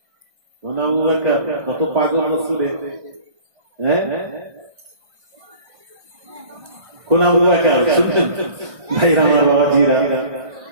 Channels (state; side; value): late; left; 1.6 ms